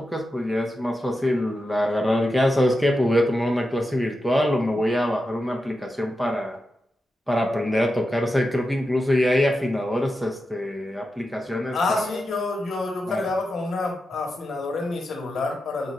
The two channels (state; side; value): normal; both; correlation 0.89